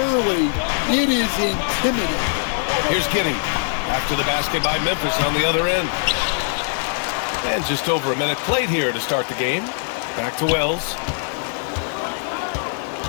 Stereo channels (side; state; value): right; silent; digital silence